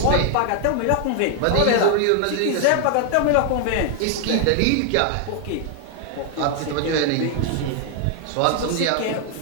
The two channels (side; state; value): both; different; correlation 0.00